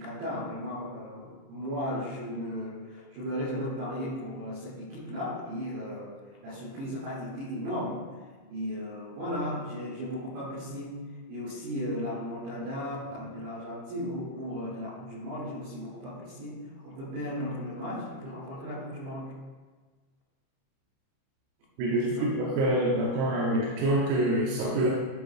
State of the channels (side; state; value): left; late; 30 ms